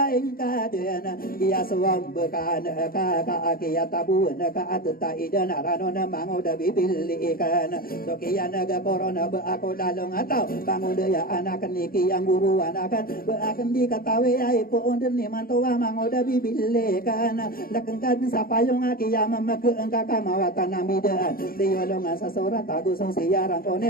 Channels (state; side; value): late; right; 0.43 ms